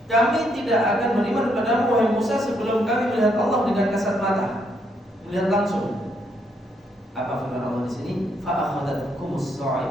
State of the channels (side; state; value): both; normal; correlation 0.74